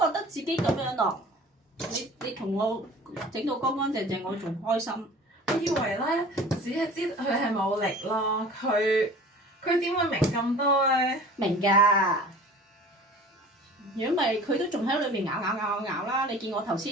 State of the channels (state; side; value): normal; both; correlation 0.43